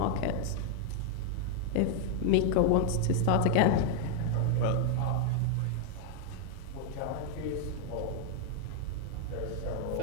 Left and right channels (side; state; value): both; different; correlation 0.00